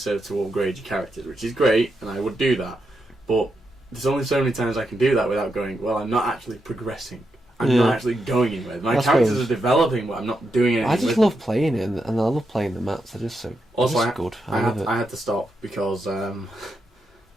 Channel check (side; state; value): both; normal; correlation 0.84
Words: to upgrade your characters, which is great, and I would do that, but there's only so many times I can do that without going, well, I'm not actually progressing. I'm not actually going anywhere. My characters are developing, but I'm not doing anything. I just love playing it, and I love playing the maps. They're just so good. I had to stop because